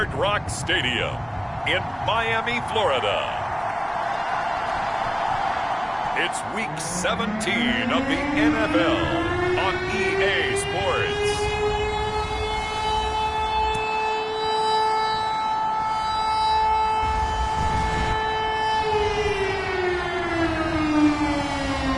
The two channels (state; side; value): identical; both; correlation 1.00